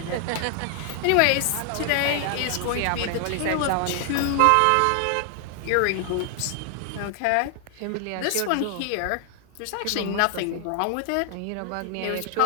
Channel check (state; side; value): different; both; correlation 0.00